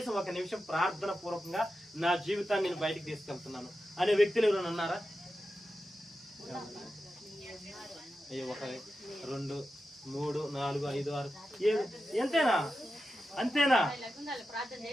నిమిషం ప్రార్థన పూర్వకంగా నా జీవితాన్ని నేను బయటికి తీసుకెళ్తున్నాను అనే వ్యక్తులు ఎవరైనా ఉన్నారా? అయ్యో, 1 2 3 4 5 6 అంతేనా?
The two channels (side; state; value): both; normal; correlation 0.91